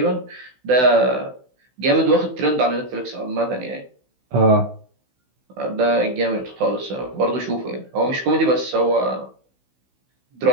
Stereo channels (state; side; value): late; left; 16 ms